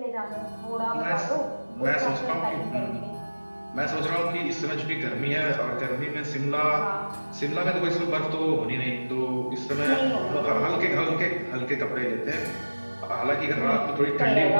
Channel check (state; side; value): inverted; both; correlation -1.00